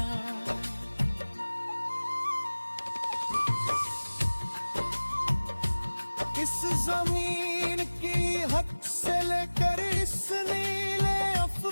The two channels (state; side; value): inverted; both; correlation -1.00